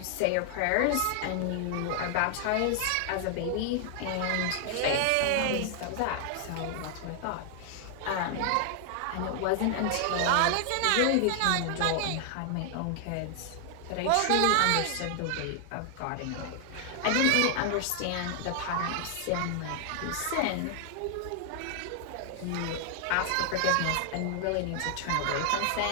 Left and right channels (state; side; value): different; both; correlation 0.00